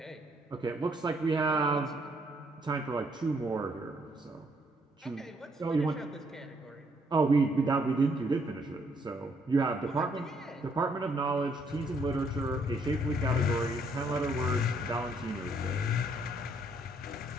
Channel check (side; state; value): both; normal; correlation 0.69